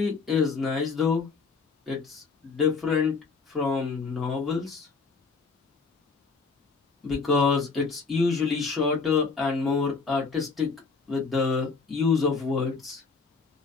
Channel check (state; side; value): quieter; right; 4.6 dB